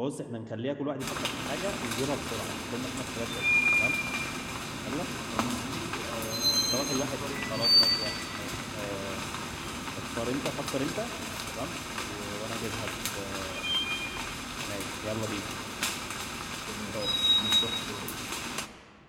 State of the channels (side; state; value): both; identical; correlation 1.00